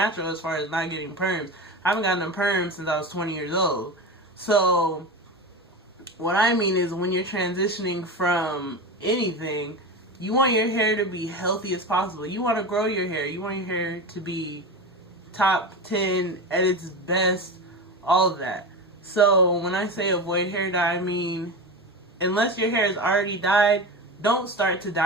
as far as not getting perms. I haven't gotten a perm since I was 20 years old. So, what I mean is when you're transitioning from anything, you want your hair to be healthy as possible. You want to grow your hair. You want your hair to be top 10 at its best, all of that. So, when I say avoid hair dye, I mean, unless your hair is already dyed, don't start to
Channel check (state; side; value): normal; both; correlation 0.24